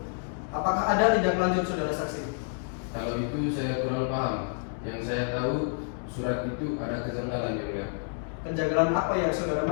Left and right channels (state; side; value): silent; right; 59 dB below the other